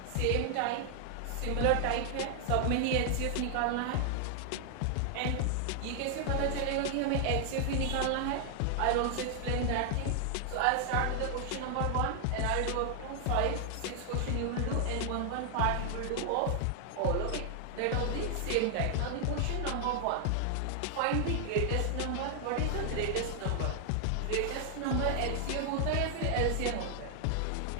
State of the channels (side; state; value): both; different; correlation 0.00